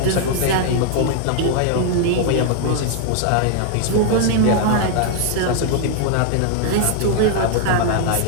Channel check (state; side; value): different; both; correlation 0.00